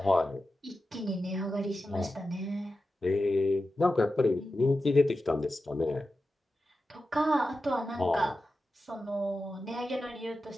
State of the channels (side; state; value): both; normal; correlation 0.92